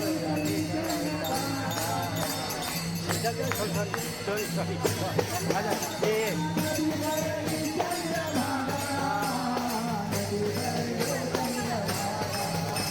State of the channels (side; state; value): left; noise; hum, 29 dB below the sound